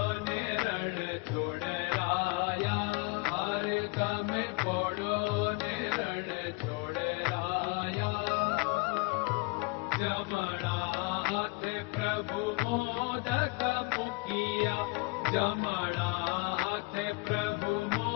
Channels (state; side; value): quieter; right; 28.2 dB